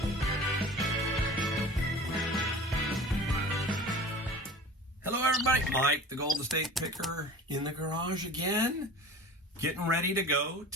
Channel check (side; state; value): both; normal; correlation 0.39